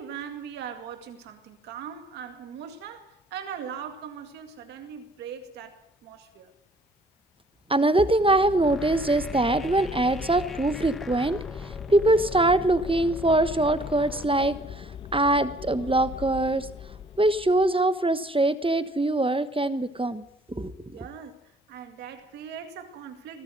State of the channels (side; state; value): both; normal; correlation 0.58